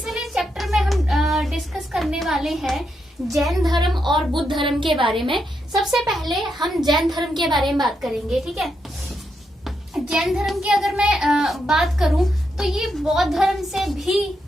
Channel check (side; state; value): both; normal; correlation 0.82